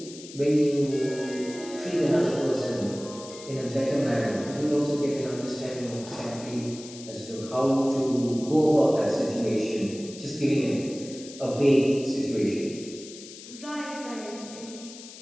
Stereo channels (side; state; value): left; noise; hiss, 15 dB below the sound